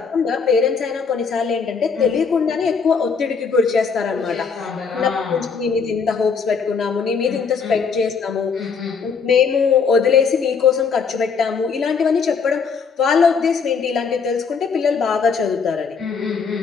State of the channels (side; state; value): right; quieter; 5.6 dB